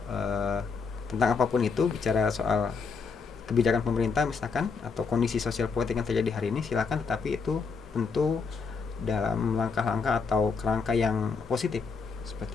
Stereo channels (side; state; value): right; quieter; 5.1 dB